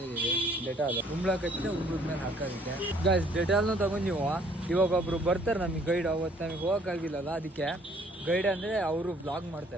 ಇದೀವಿ, ಡೆಟಾಲ್ ಉಂಬ್ಳಕತ್ತಿನ ಉಂಬ್ಳದ ಮೇಲೆ ಹಾಕೋದಕ್ಕೆ. ಗಾಯ್ಸ್ ಡೆಟಾಲ್ನು ತಗೊಂಡಿವ. ಇವಾಗ ಒಬ್ರು ಬರ್ತಾರೆ ನಮಗೆ ಗೈಡ್. ಅವತ್ತು ನಮಗೆ ಹೋಗಕ್ಕಾಗಿಲ್ಲಲ್ಲ, ಅದಕ್ಕೆ ಗೈಡ್ ಅಂದ್ರೆ ಅವರು ಬ್ಲಾಗ್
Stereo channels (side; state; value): both; normal; correlation 0.61